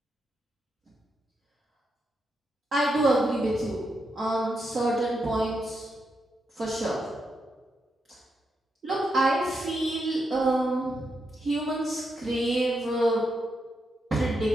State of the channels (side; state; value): both; normal; correlation 0.83